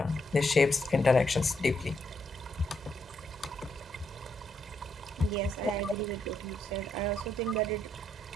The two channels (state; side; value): normal; both; correlation 0.77